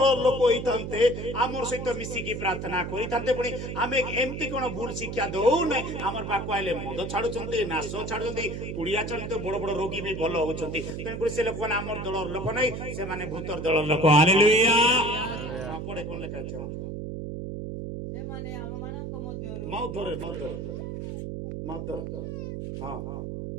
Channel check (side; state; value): right; noise; hum, 6 dB below the sound